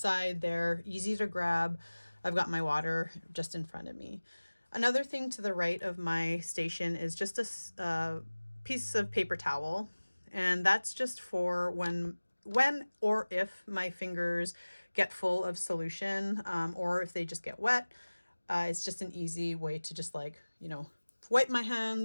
They're easy to grab. I've got my water just in front of me. Another thing to the right of my station is just a piece of paper towel, and that's just for when or if my fingers get full of solution, or if they just get wet. It's just an easy way to just wipe my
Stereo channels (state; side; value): inverted; both; correlation -1.00